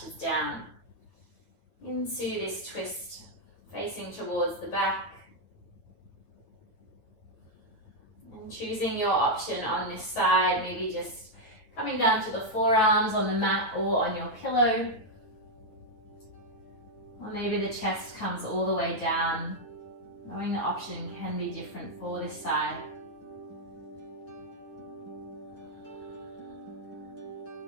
down into this twist, facing towards the back. And choosing your option on this side, maybe just coming down to the forearms on the mat or on your pillow. Or maybe the chest comes all the way down. Knowing the option can be different for this side.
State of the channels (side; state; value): right; late; 9.5 ms